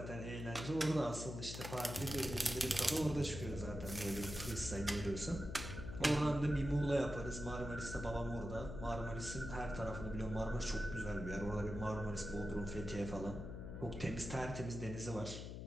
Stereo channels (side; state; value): left; noise; hum, 7 dB below the sound